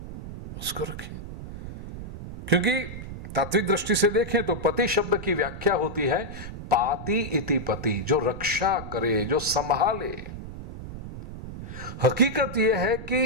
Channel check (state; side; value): noise; right; rumble, 10 dB below the sound